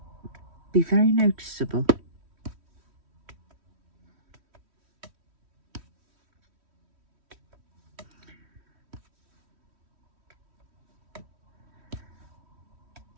be very noticeable.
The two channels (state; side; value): late; left; 3.1 ms